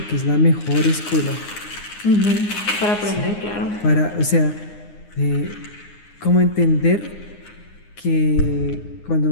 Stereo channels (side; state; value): right; late; 9.7 ms